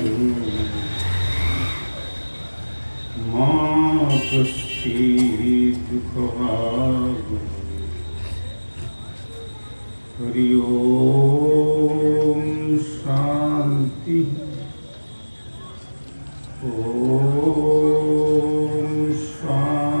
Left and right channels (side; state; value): both; inverted; correlation -1.00